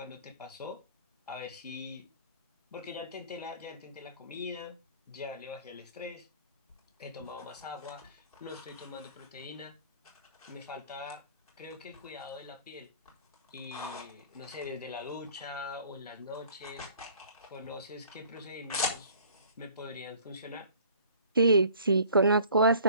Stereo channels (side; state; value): both; inverted; correlation -0.51